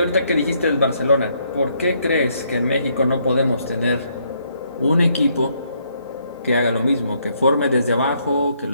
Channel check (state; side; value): inverted; both; correlation -0.72